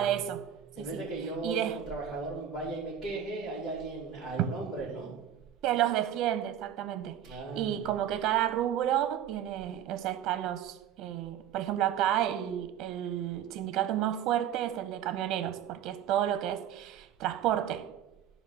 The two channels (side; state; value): left; quieter; 9.7 dB